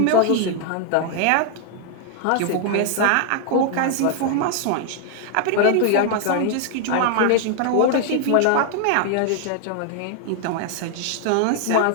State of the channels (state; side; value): different; both; correlation 0.00